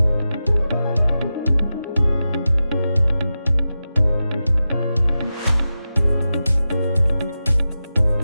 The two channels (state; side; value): inverted; both; correlation -0.92